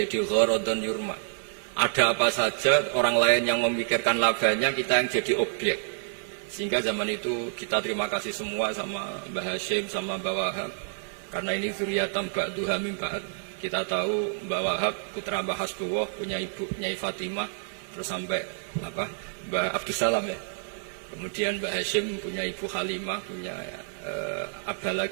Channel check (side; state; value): left; silent; 59 dB below the other